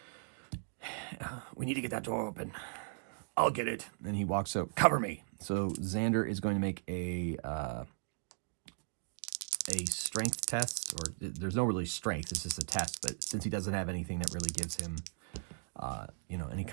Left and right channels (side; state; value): left; silent; digital silence